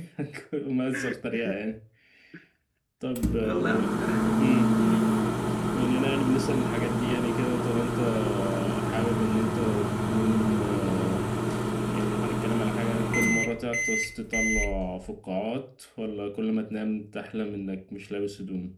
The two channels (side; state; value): both; identical; correlation 1.00